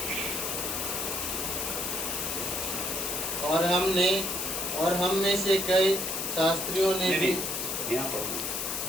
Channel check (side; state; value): left; noise; hiss, 2 dB below the sound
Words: और हम में से कई शास्त्रियों ने भी यहाँ पढ़ो